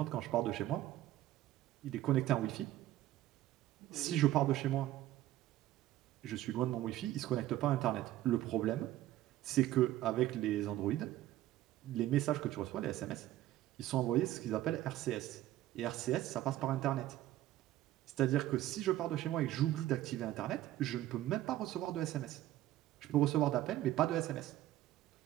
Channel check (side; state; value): left; quieter; 14.3 dB